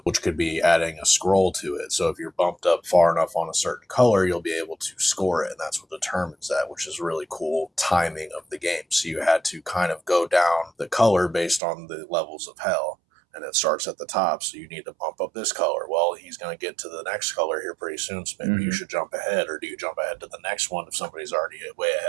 which could be adding a scroll to it. So if you're bumped up far enough on a certain color, you'll be able to score it, and that's what determines that, which is really cool timing of the game. So you had to kind of go down the color based on the levels of hell. And it starts at the top, so you need to bump up this color. Well, he's going to get to the next color here pretty soon, so maybe you should jump ahead, or do you jump ahead to the next one if somebody's already way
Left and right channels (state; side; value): drops out; left; at 11.6 s